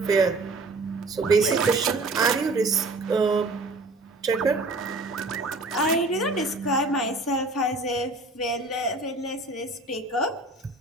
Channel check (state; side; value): quieter; left; 3.0 dB